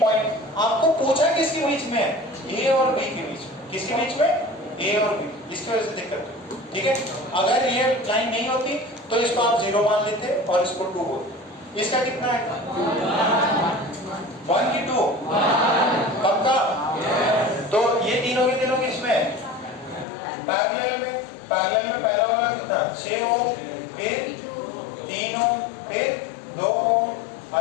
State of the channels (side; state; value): right; drops out; at 20.1 s